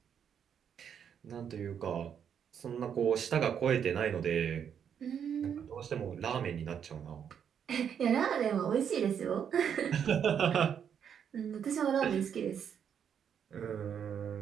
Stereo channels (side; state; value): left; quieter; 8.1 dB